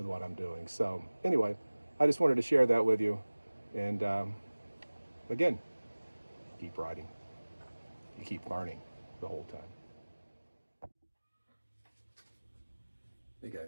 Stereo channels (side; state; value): both; inverted; correlation -1.00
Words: I'm doing. So anyway, I just wanted to share that with you, and again, keep writing. You keep learning the whole time. Hey